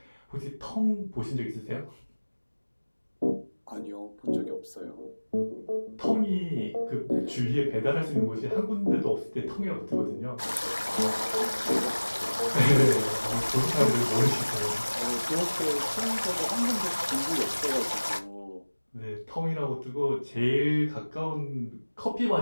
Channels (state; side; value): inverted; both; correlation -1.00